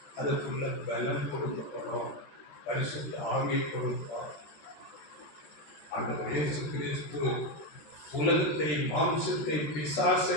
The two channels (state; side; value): late; right; 13 ms